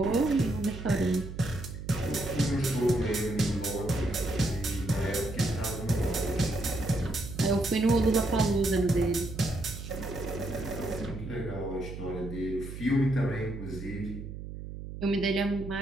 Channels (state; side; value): noise; right; hum, 9 dB below the sound